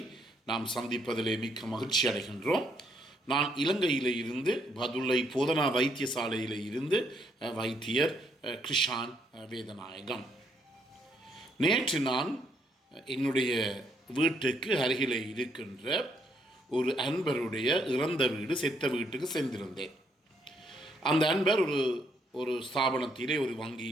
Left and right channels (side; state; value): both; normal; correlation 0.72